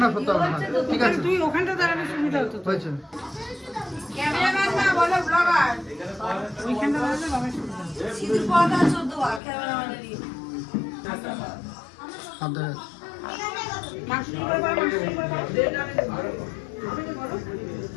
না সত্য না, ঠিক আছে তুই ওখানটা দাঁড়ালে সুবিধা হতো। হয়েছে। ক্যামেরাম্যান না বলো ব্লগার, ওইখানটা দাঁড়ালে বাবা সুবিধা। সিধু পড়া 14 বার ক্যামেরাম্যানেরই আদর মাসি করে বলো, মাসি করে বলো।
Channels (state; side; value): drops out; right; at 9.4 s